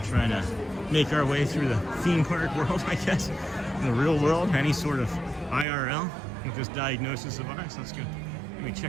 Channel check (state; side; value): drops out; left; at 5.7 s